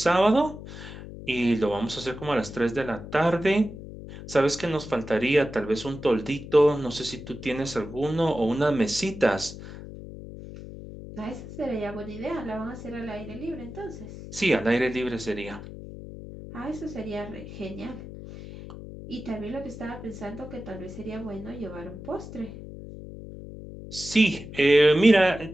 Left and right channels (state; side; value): noise; left; hum, 12 dB below the sound